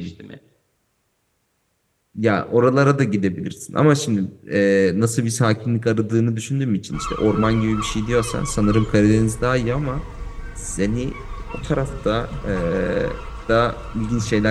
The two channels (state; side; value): identical; both; correlation 1.00